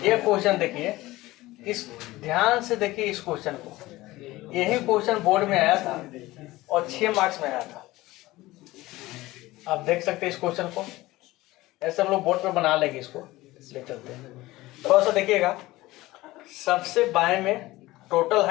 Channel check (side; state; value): right; quieter; 18.5 dB